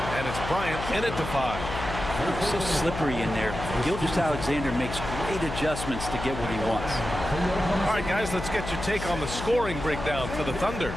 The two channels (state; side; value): noise; left; hum, 7 dB below the sound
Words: And it's Bryant in at the 5. So slippery in there. Gilgeous-Alexander makes great adjustments to get what he wants. All right, guys, let's get your take on the scoring breakdown for the Thunder.